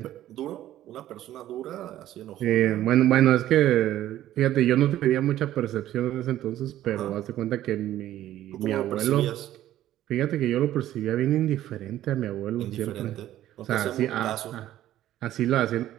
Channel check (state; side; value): quieter; left; 13.2 dB